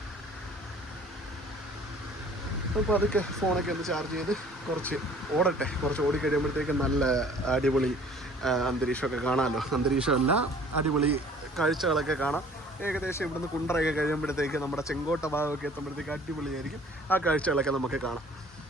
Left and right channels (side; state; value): both; normal; correlation 0.51